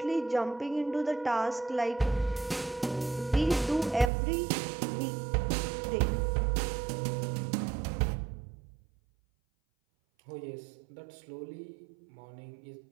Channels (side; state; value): left; drops out; at 4.1 s